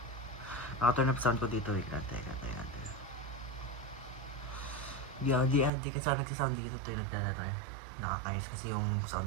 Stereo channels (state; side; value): drops out; left; at 5.7 s